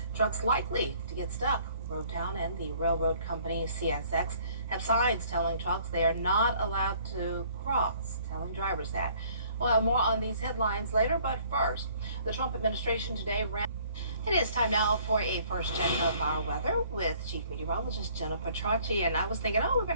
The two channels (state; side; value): inverted; both; correlation -0.59